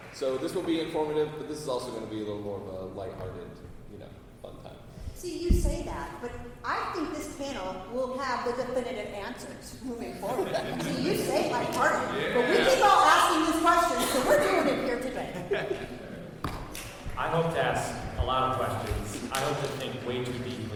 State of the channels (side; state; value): both; identical; correlation 1.00